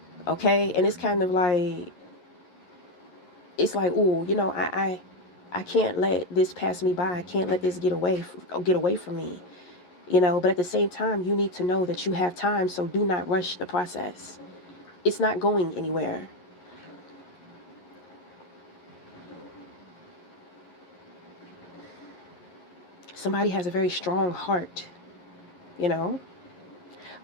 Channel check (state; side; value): late; right; 11 ms